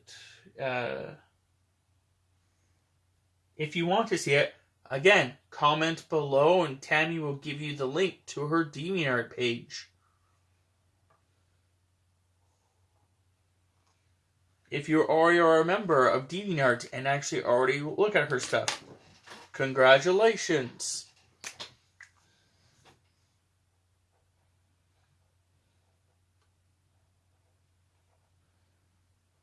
if you want to see it, again, comment below and Tammy will give you the link to her DeviantArt page. If you already are a member of DeviantArt and actually already look at her stuff, congratulations.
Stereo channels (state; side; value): identical; both; correlation 1.00